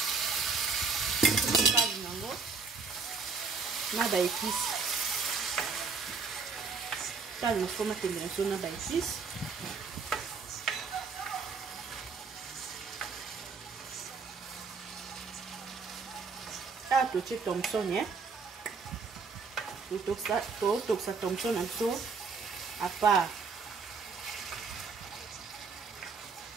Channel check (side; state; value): left; quieter; 4.8 dB